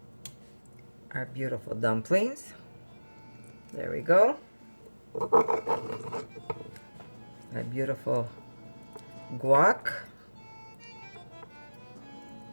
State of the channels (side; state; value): both; inverted; correlation -1.00